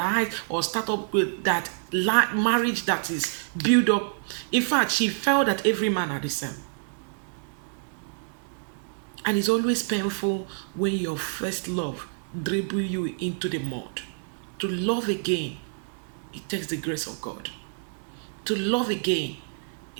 or start up with that marriage that is built up. In fact, she felt that every man are the same. And it's always painful when your first love dribble you into the mud. To love again, it takes the grace of God. To love again,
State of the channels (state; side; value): silent; left; digital silence